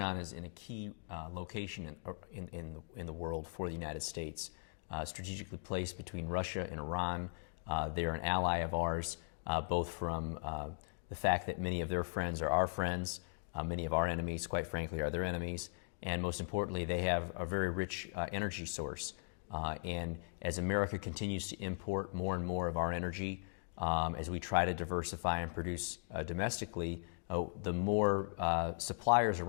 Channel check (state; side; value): silent; right; digital silence